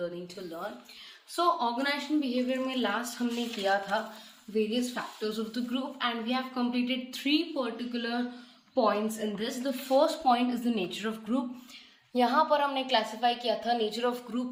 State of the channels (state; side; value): identical; both; correlation 1.00